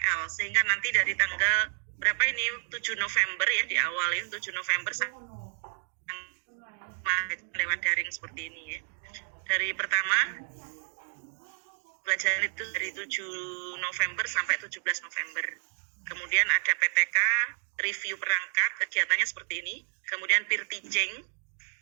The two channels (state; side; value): silent; left; digital silence